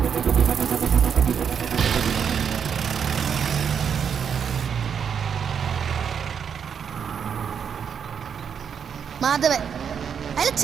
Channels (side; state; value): left; quieter; 7.3 dB